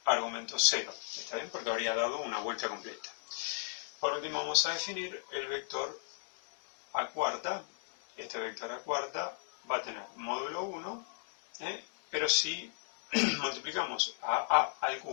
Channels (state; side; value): silent; right; digital silence